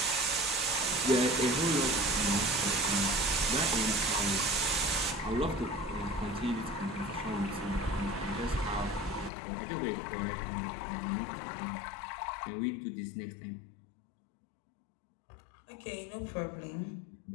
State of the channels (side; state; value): right; drops out; at 9.3 s